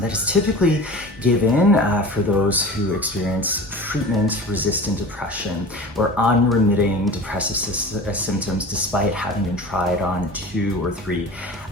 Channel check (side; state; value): both; normal; correlation 0.36